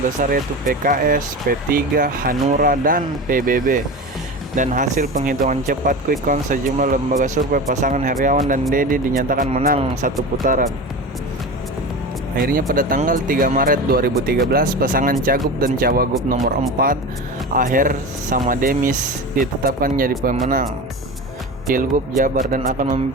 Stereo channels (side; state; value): both; normal; correlation 0.28